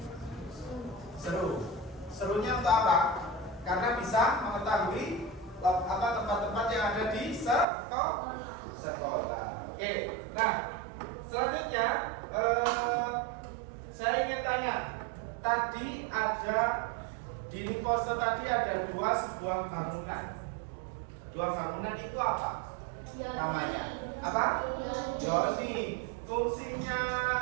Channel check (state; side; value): drops out; left; at 7.7 s